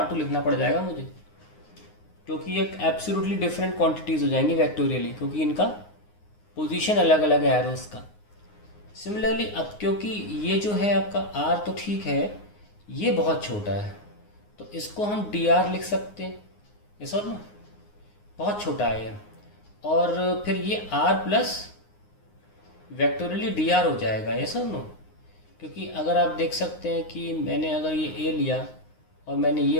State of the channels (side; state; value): right; late; 9.6 ms